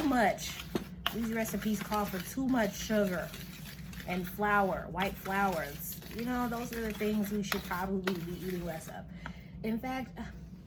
much. These recipes call for too much sugar and flour, white flours. You know, those are the things we should probably be eating less of. In fact,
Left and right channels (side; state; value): both; identical; correlation 1.00